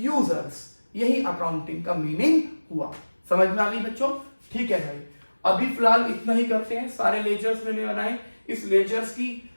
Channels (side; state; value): both; inverted; correlation -1.00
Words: यही अकाउंटिंग का मीनिंग हुआ। समझ में आ गई बच्चों, ठीक है भाई। अभी फिलहाल इतना ही करते हैं, सारे लेजर्स मैंने बनाए, इस लेजर्स की